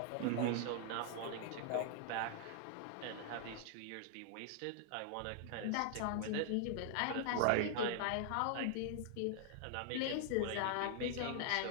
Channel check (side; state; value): both; different; correlation 0.00